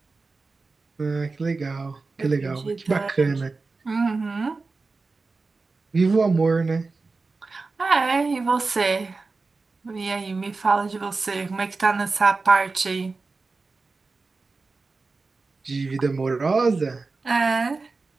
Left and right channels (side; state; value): left; quieter; 3.9 dB